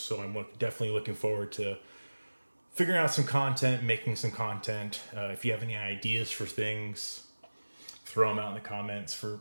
I'm definitely looking forward to figuring out some content, making some content. If you have any ideas for things, throw them out in the comments for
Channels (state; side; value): inverted; both; correlation -1.00